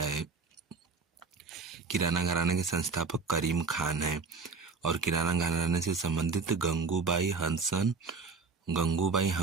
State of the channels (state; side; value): quieter; left; 4.6 dB